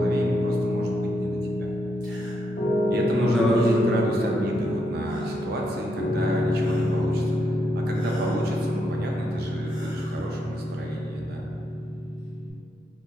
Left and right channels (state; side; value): normal; both; correlation 0.80